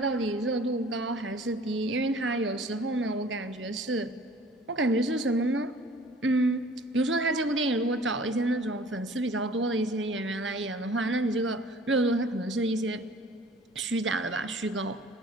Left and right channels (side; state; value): both; normal; correlation 0.50